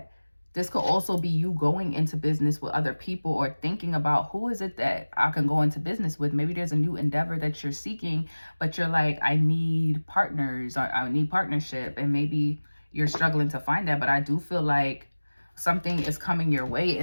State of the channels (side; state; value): both; inverted; correlation -1.00